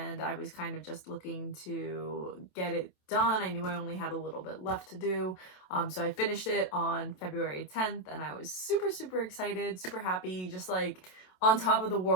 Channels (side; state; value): right; late; 27 ms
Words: I was kind of just looking to get it done. I knew I only had a little bit left to do, so I finished it on February 10th and I was super excited, super happy, just on top of the